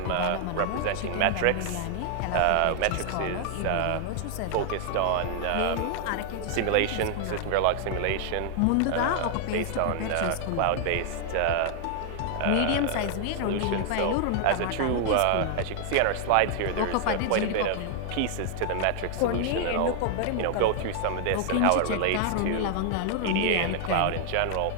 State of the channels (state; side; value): different; both; correlation 0.00